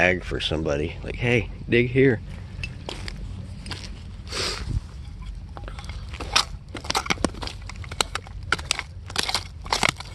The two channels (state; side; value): identical; both; correlation 1.00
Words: for somebody. Like, hey, dig here.